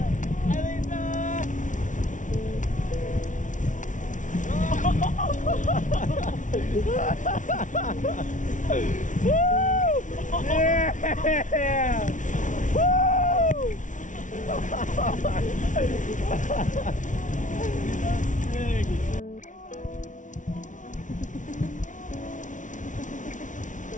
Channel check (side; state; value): right; late; 0.37 ms